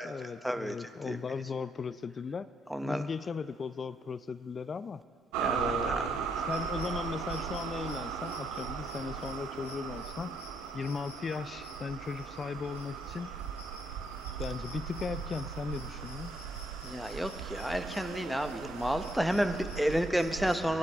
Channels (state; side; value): normal; both; correlation 0.75